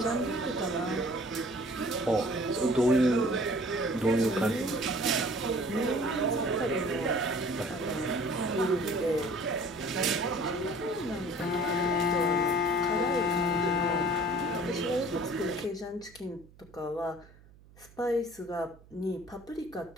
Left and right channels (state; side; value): noise; right; hum, 24 dB below the sound